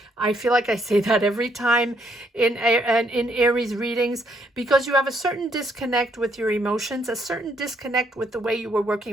I feel like I say that every time in Aries readings, because you have a certain disconnect with your emotions, a certain disconnect with the way you were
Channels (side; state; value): both; normal; correlation 0.71